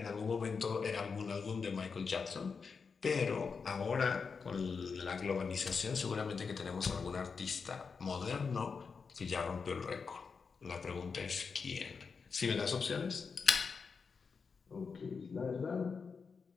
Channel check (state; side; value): quieter; right; 5.3 dB